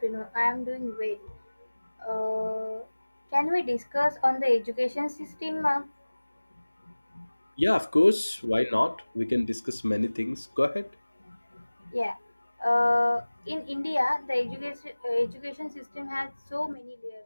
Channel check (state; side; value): inverted; both; correlation -1.00